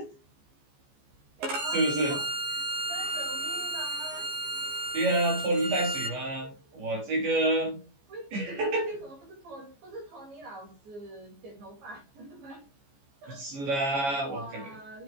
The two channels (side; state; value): left; late; 14 ms